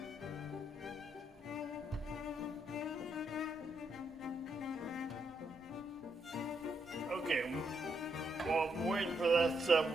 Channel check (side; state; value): both; normal; correlation 0.77